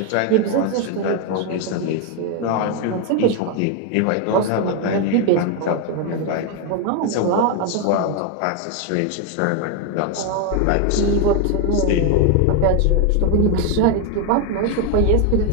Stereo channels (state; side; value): different; both; correlation 0.01